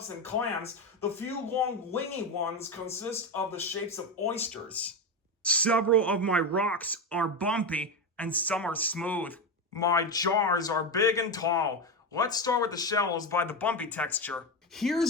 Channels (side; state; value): both; normal; correlation 0.15